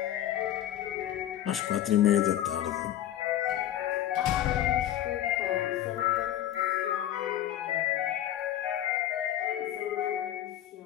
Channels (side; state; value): right; quieter; 12.0 dB